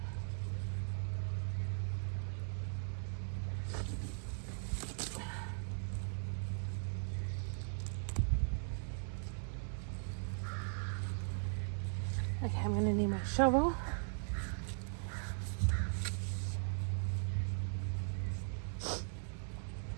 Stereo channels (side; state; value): left; silent; digital silence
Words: Okay, I'm gonna need my shovel.